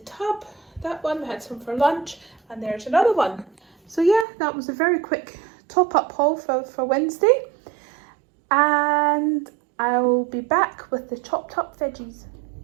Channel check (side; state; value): left; drops out; at 4.2 s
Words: tub. That one, we had some for lunch, and there's another one. So yeah, that was a very quick top-up haul for Wednesday, and I'll be back with the chopped up veggies.